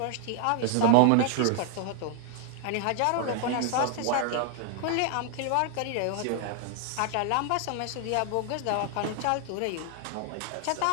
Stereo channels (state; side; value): different; both; correlation 0.00